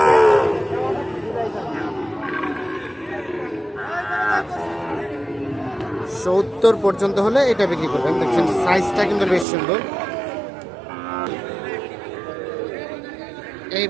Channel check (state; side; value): drops out; left; at 9.5 s